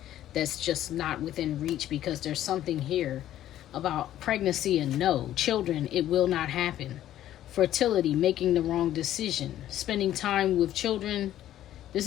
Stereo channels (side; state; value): right; quieter; 12.5 dB